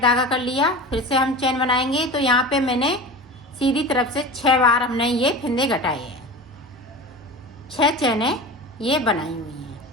धागा कर लिया, फिर से हम चैन बनाएंगे। तो यहाँ पे मैंने सीधी तरफ से 6 बार हमने ये फिंदे घटाए हैं, 6 चैनें ये बनाई हुई हैं।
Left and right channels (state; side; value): normal; both; correlation 0.32